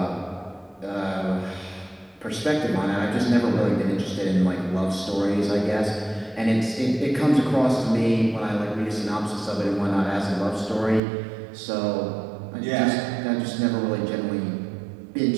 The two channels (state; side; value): drops out; left; at 11.0 s